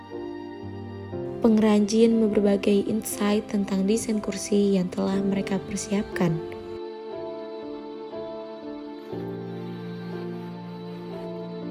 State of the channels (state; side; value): identical; both; correlation 1.00